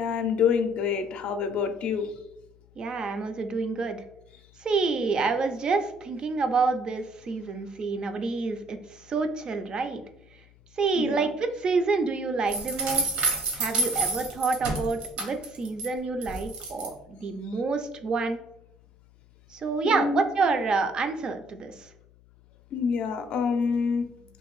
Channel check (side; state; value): left; noise; hum, 27 dB below the sound